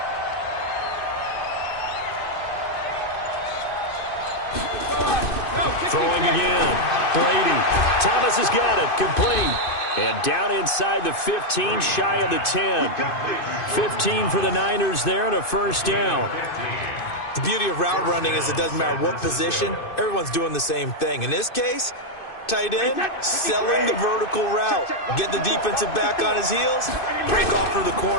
Throwing again. Brady. Thomas has got it. Complete. And down inside the 15, shy of the 10. 15 for the Niners there and a 1st down. The beauty of route running is it doesn't matter what position, everyone's doing the same thing. In this case, tight end, selling the vertical route. Get the defensive back on his heels, break off for the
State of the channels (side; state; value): right; late; 2.6 ms